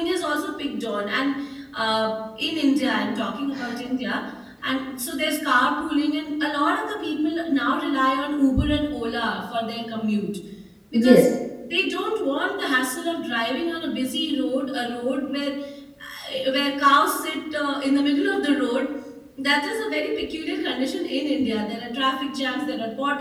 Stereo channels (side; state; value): both; identical; correlation 1.00